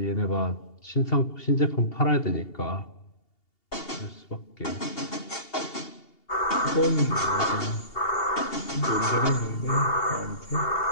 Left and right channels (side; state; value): right; late; 2.8 ms